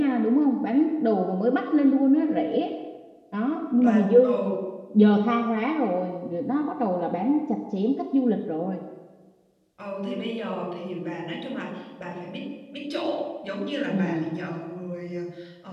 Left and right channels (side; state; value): both; identical; correlation 1.00